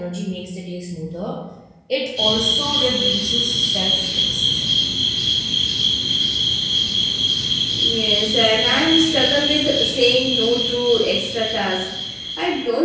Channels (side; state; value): both; identical; correlation 1.00